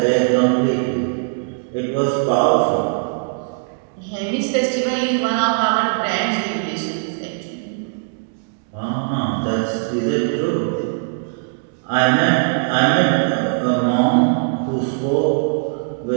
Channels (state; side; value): silent; left; 66 dB below the other